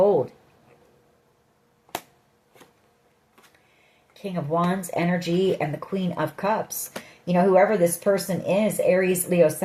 King of Wands energy and the Queen of Cups. You know, whoever this person is, Aries, Leo,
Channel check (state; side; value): identical; both; correlation 1.00